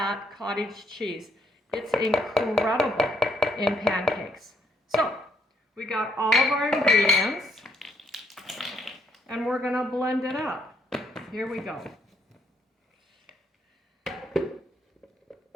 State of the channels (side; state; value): both; normal; correlation 0.71